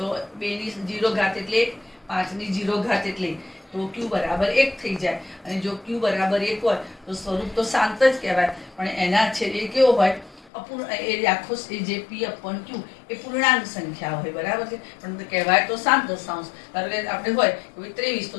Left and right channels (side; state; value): right; drops out; at 10.5 s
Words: 2ની 0 ઘાત એટલે 5ની 0 ઘાત એટલે તો Q બરાબર 1 થઈ જાય. અને જો Q બરાબર 1 હોય તો સ્વરૂપ તો શાંત જ કહેવાય, પણ એના છેદ એ કેવો હોય? આખો જે P/Q એ પૂર્ણાંક સંખ્યા હોય, બરાબર છે, પણ કહેવાય તો શાંત દશાંશ. ધારો કે આપણે હોય 23 તો